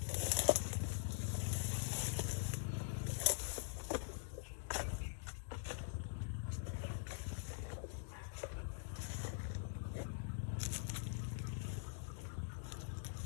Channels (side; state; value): right; silent; digital silence